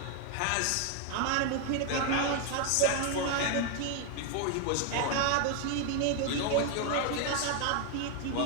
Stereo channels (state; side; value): different; both; correlation 0.01